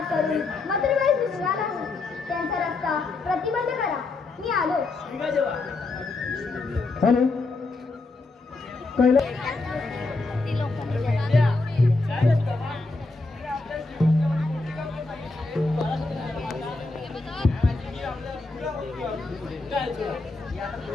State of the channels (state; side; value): quieter; right; 3.4 dB